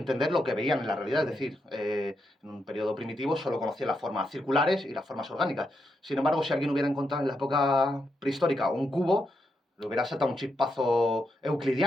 lo que veían en la realidad. Es decir, en un periodo primitivo solo conocían las formas circulares y las formas orgánicas. Sin embargo, si alguien hubiera encontrado en la época prehistórica un cubo, le hubiera saltado un chispazo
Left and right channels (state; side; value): normal; both; correlation 0.82